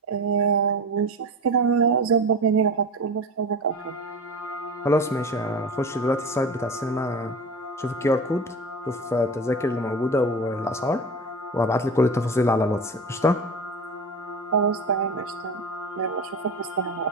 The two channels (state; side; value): normal; both; correlation 0.30